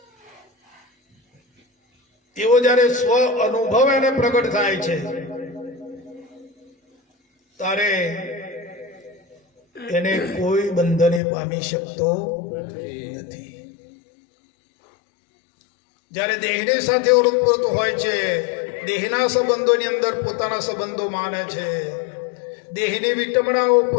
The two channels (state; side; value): drops out; right; at 11.2 s